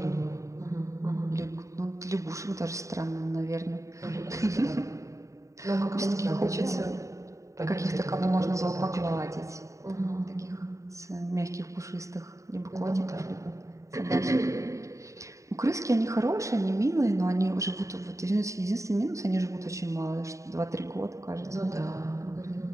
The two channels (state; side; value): late; left; 0.15 ms